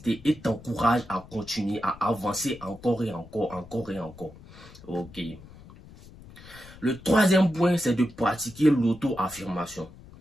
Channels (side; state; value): left; noise; rumble, 20 dB below the sound